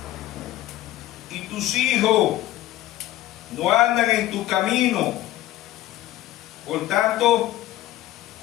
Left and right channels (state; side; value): quieter; right; 15.0 dB